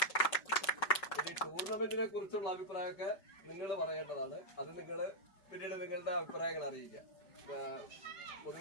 ഈ ടൂർണമെന്റിനെ കുറിച്ചുള്ള അഭിപ്രായമൊക്കെ നിങ്ങൾ പറയേണ്ടതാണ്. അത് നിങ്ങൾ പിന്നീട് നിങ്ങളുടെ അഭിപ്രായങ്ങൾ അറിയിക്കുക.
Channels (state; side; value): late; right; 5.5 ms